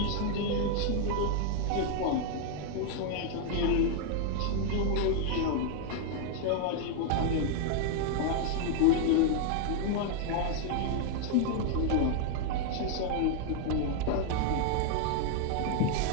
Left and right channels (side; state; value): both; different; correlation 0.00